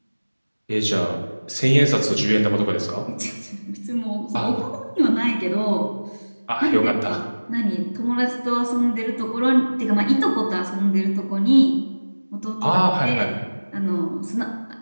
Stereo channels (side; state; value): both; inverted; correlation -1.00